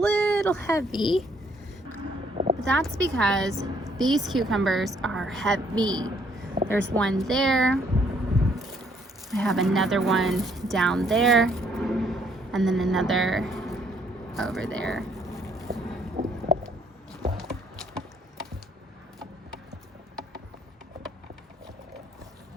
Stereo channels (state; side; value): normal; both; correlation 0.67